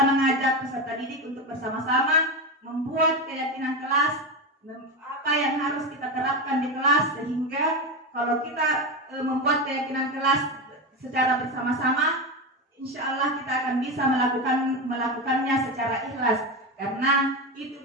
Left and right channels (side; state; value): both; normal; correlation 0.16